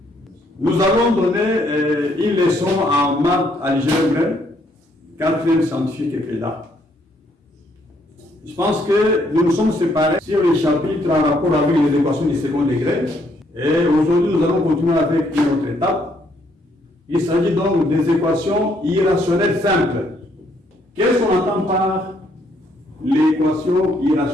Nous allons donner une leçon en maths algèbre, 4e scientifique et PEDA. Je pense que nous nous sommes séparés sur les chapitres en rapport avec les équations du second degré. Et aujourd'hui, nous allons continuer avec une autre étape. Il s'agit donc des équations irrationnelles simples. Qu'est-ce qu'on entend par l'équation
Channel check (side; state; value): both; normal; correlation 0.70